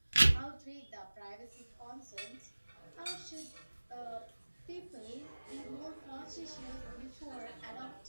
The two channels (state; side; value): inverted; both; correlation -1.00